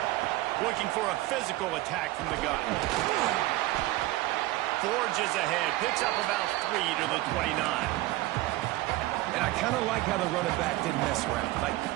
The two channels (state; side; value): quieter; left; 18.1 dB